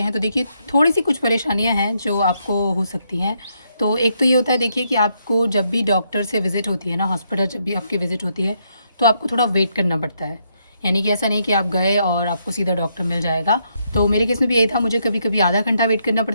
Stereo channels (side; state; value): both; inverted; correlation -0.76